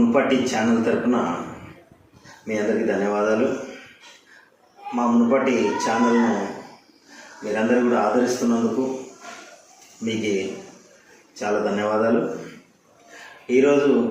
ఛానల్ తరపున మీ అందరికీ ధన్యవాదాలు. మా మునుపటి ఛానల్ను మీరందరూ కూడా ఆదరిస్తున్నందుకు మీకు చాలా ధన్యవాదాలు. ఈరోజు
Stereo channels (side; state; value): both; identical; correlation 1.00